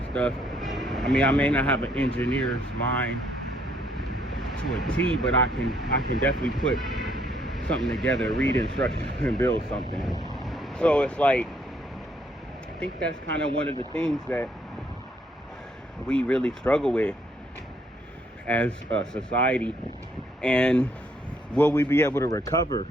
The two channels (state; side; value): normal; both; correlation 0.69